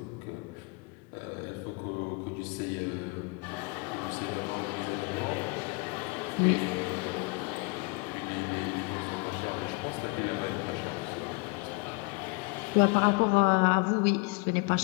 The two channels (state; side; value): quieter; right; 29.8 dB